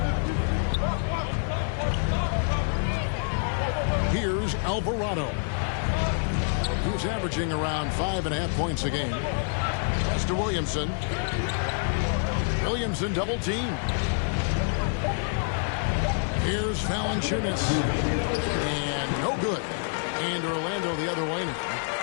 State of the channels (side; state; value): right; silent; 58 dB below the other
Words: Here's Alvarado. He's averaging around 5.5 points a game. Pass to Williamson. Williamson double team. Here's Valanciunas. And no good. And Orlando the other way now.